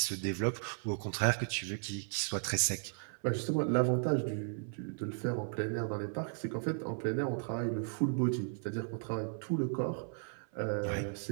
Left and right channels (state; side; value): silent; left; 54 dB below the other